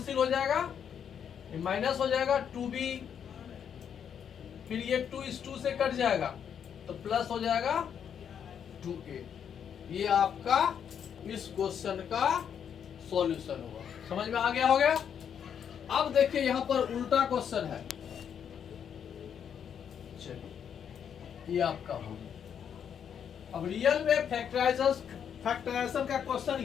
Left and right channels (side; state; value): right; quieter; 8.2 dB